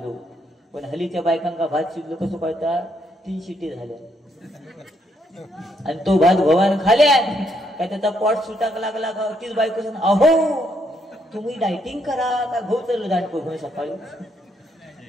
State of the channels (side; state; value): both; normal; correlation 0.74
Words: पण हलीच्या बायकांका भात शिजलो कसं कळता 3 शिटी झाल्या आणि तो भात भवान खाल्या काय त्याचा पोट सुटाक लागला का तीच बायको सांग अहो तुम्ही डायटिंग करा का भाऊ चाललो दांडको घेऊन सकाळी